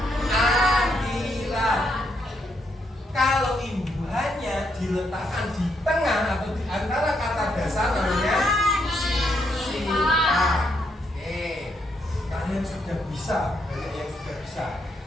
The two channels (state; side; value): normal; both; correlation 0.77